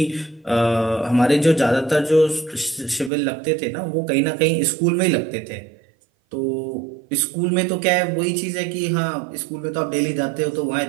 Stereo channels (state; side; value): drops out; left; at 3.1 s